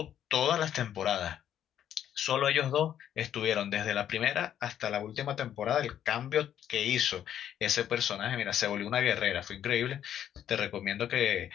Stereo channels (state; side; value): quieter; right; 10.3 dB